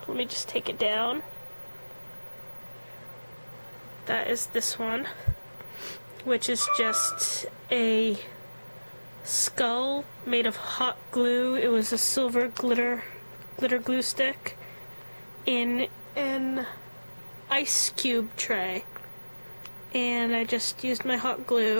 let me just take it down. That is this one, which is just a skull made of hot glue. It was a silver glitter glue stick in an ice cube tray, and I just used my hot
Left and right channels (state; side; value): inverted; both; correlation -1.00